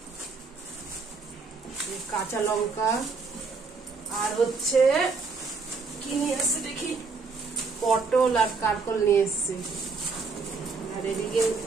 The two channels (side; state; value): left; quieter; 4.5 dB